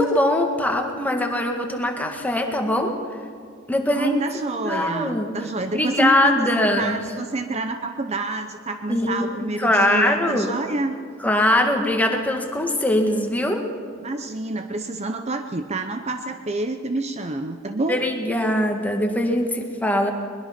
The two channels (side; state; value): both; normal; correlation 0.57